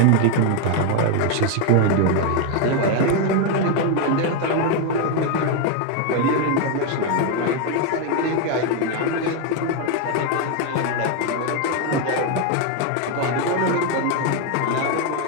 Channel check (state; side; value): different; both; correlation 0.01